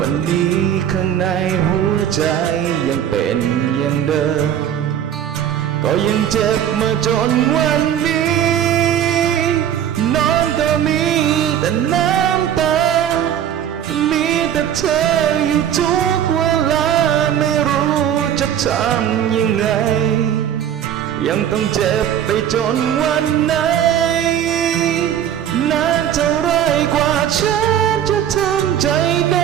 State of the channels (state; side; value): quieter; left; 10.0 dB